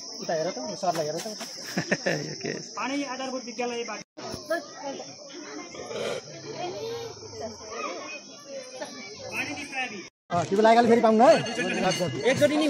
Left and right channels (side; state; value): both; identical; correlation 1.00